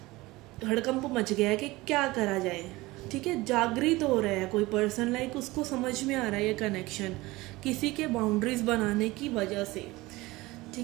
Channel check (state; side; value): quieter; left; 20.4 dB